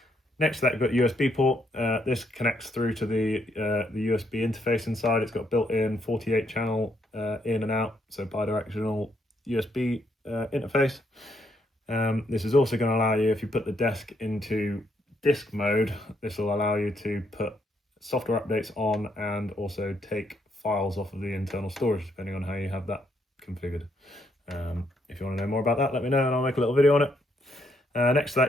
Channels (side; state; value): both; normal; correlation 0.74